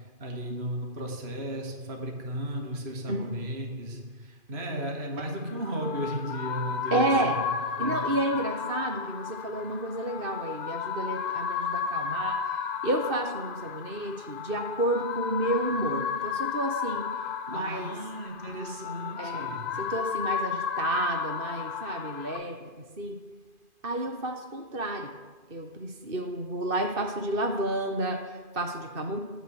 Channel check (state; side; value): late; left; 2.5 ms